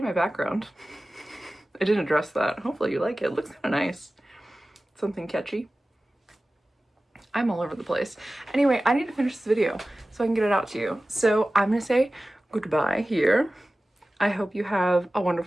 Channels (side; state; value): both; normal; correlation 0.96